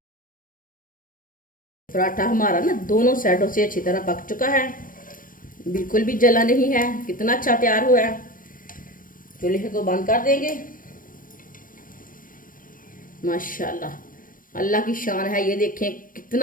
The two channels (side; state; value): right; late; 0.40 ms